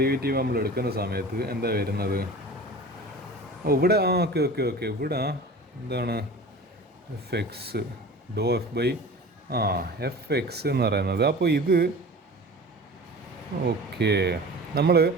നമ്മൾ എടുക്കുന്ന സമയത്ത് എന്താ വരുന്നത്? ഇവിടെ ഓക്കെ ഇവിടെ എന്താണ് fx fx എന്ന് പറയുന്നത്. അപ്പോൾ ഇത് ഓക്കെ, നമ്മൾ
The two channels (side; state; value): both; normal; correlation 0.38